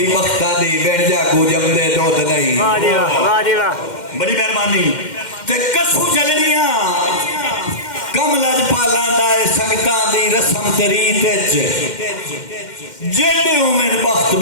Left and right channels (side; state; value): right; late; 2.1 ms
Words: بختہ دی بیٹھ جا کو جم دے دود نہیں واہ جی واہ بڑی مہربانی تے کسو جلنیاں کم لج پالاں دائے سنگتاں دی رسم تریت جیڑے اومن بخت